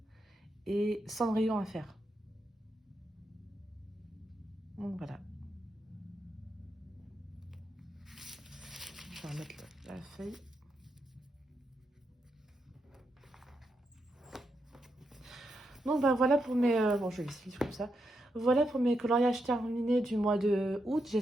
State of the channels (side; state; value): both; normal; correlation 0.84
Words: et Cendrillon à faire. Donc, voilà. je vais remettre la feuille. Donc bah voilà pour mes... bon, je vais laisser comme ça. Voilà pour mes coloriages terminés du mois de août.